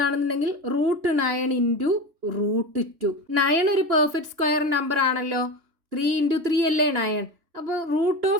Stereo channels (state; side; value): late; left; 2.9 ms